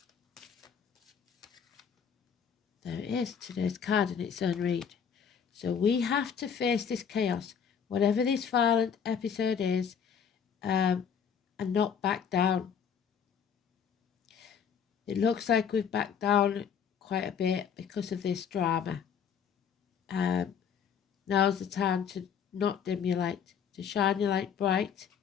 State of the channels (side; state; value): right; quieter; 7.3 dB